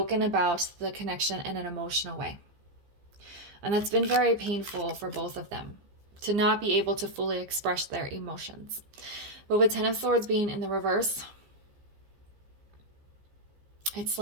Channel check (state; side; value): late; left; 15 ms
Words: about the connection in an emotional way. And that's been very painful for both of them, to not be able to fully express their emotions. But with 10 of Swords being in the reverse, it's